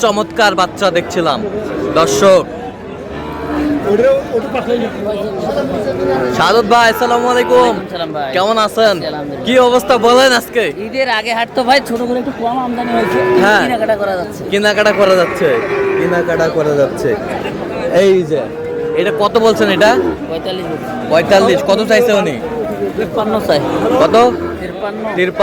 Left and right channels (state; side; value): identical; both; correlation 1.00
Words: চমৎকার বাচ্চা দেখছিলাম দর্শক। সাদত ভাই আসসালামু আলাইকুম, কেমন আছেন? কি অবস্থা বলেন? আজকে ঈদের আগে হাট তো ভাই ছোট করে একটু কম আমদানি হয়েছে, কেনাকাটা করা যাচ্ছে। কেনাকাটা করা যাচ্ছে। এই যে এটা কত বলছেন? এটা 45। কত চাইছে উনি? 53 চাই। কত?